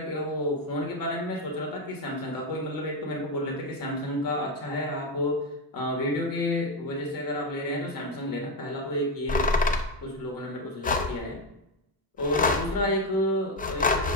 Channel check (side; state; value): both; normal; correlation 0.08